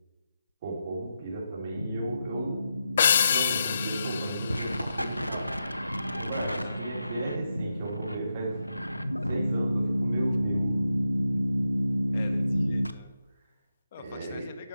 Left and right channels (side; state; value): both; inverted; correlation -0.87